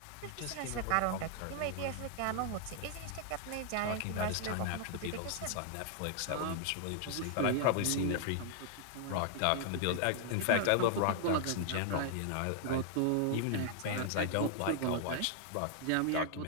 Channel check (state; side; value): different; both; correlation 0.00